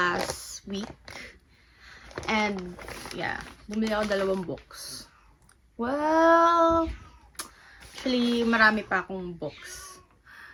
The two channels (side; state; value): both; identical; correlation 1.00